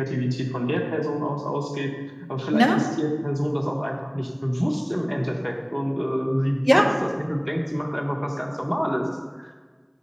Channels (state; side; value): identical; both; correlation 1.00